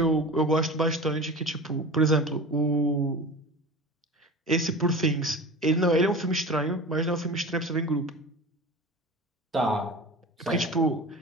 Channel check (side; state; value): both; normal; correlation 0.33